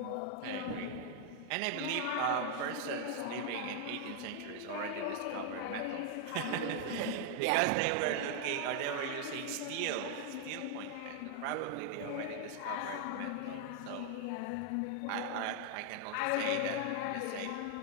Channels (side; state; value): both; different; correlation 0.00